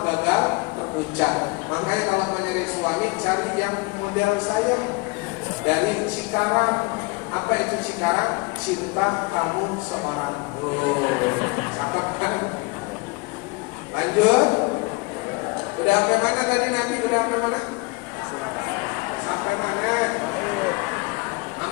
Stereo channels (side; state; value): right; quieter; 26.6 dB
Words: gagal terucap. Makanya kalau mau nyari suami cari yang model saya dari Cikarang. Apa itu Cikarang? Cinta kamu seorang. Cakep kan? Lanjut. Udah sampai mana tadi Nabi? Udah sampai mana? Sampai mana?